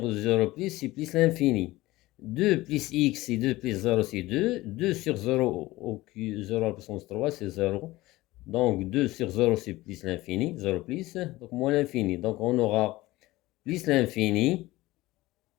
0 plus, c'est plus l'infini. 2 plus x, c'est 2 plus 0, c'est 2. 2 sur 0 au cube, 0 à la puissance 3, c'est 0. Donc 2 sur 0, c'est plus l'infini, 0 plus, donc moins l'infini. Donc on aura plus l'infini,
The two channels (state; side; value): quieter; right; 18.6 dB